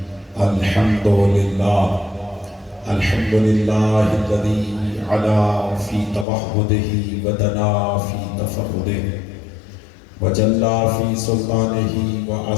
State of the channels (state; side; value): drops out; right; at 6.2 s